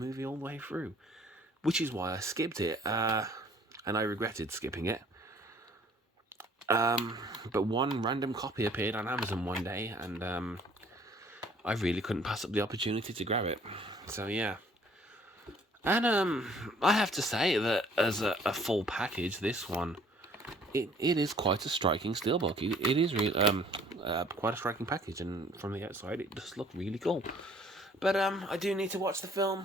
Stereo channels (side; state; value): both; normal; correlation 0.57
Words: all the way through, which is why I skipped it, and I regretted skipping it. But one random copy appeared on Amazon one day, and I really couldn't pass up the opportunity to grab it. So yeah. And I have to say that as a full package, this one, it is quite a striking steelbook. It is really quite a striking package, and from the outside, it does look really cool. But I do need to watch the